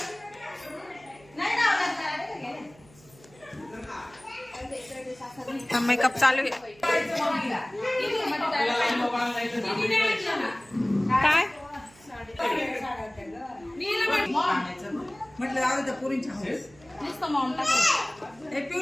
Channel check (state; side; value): noise; right; hum, 26 dB below the sound